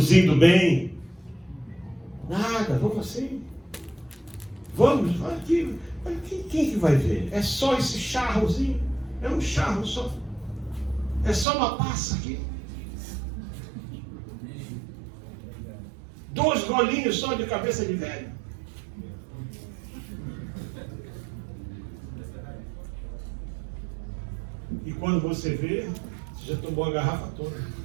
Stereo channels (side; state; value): left; drops out; at 11.5 s